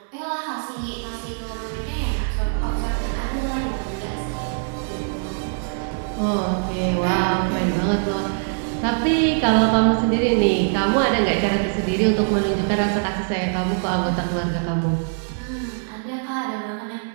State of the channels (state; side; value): silent; left; digital silence